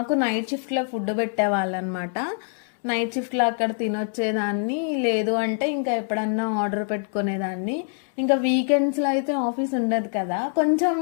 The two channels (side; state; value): right; silent; 62 dB below the other